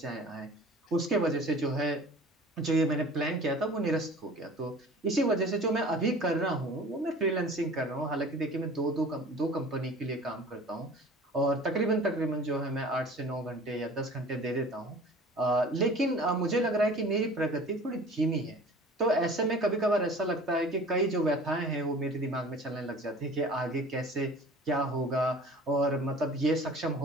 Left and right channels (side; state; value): both; normal; correlation 0.44